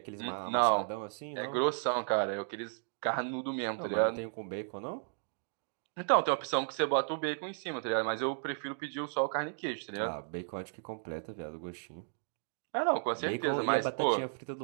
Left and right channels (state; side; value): silent; left; digital silence